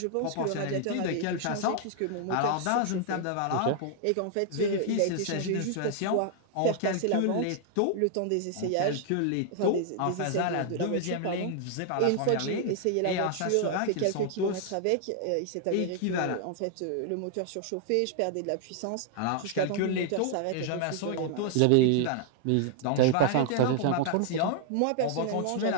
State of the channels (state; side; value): different; both; correlation 0.00